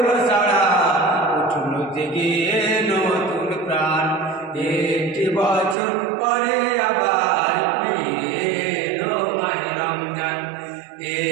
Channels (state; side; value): drops out; left; at 5.8 s